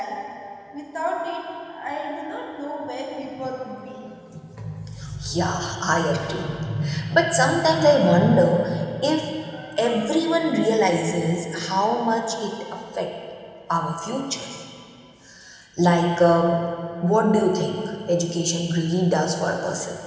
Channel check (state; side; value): identical; both; correlation 1.00